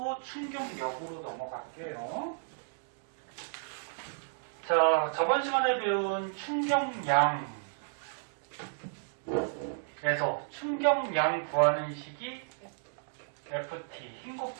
충격력으로 넘어갈게요. 자, 저번 시간에 배운 충격량에서 충격량 구하는 식이 FT, 힘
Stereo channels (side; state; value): left; silent; digital silence